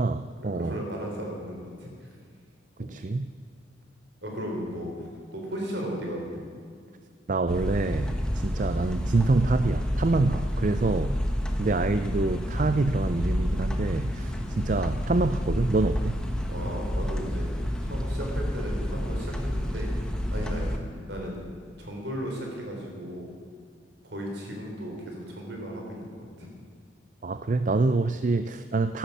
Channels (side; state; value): both; normal; correlation 0.76